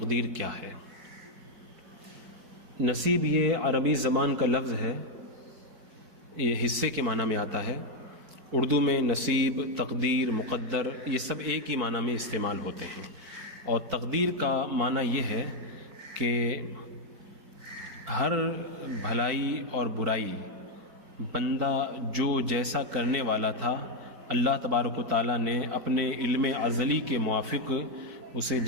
کیا ہے۔ نصیب یہ عربی زبان کا لفظ ہے، یہ حصے کے معنی میں آتا ہے۔ اردو میں نصیب، تقدیر، مقدر یہ سب ایک ہی معنی میں استعمال ہوتے ہیں، اور تقدیر کا معنی یہ ہے کہ ہر بھلائی اور برائی بندہ جو جیسا کرنے والا تھا، اللہ تبارک و تعالیٰ نے اپنے علم ازلی کے موافق اسے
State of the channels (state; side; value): late; left; 4.6 ms